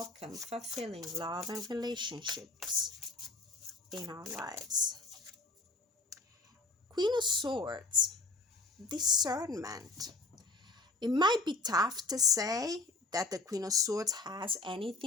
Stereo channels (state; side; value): quieter; right; 3.3 dB